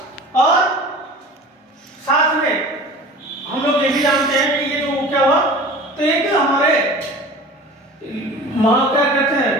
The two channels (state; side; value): normal; both; correlation 0.39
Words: और साथ में हम लोग ये भी जानते हैं कि ये जो क्या हुआ, तो एक हमारे क्या कहते हैं